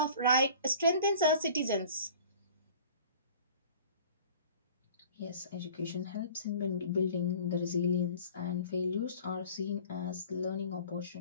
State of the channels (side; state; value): both; inverted; correlation -0.45